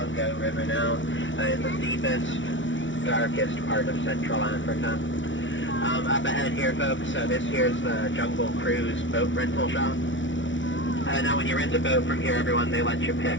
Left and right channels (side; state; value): right; late; 0.56 ms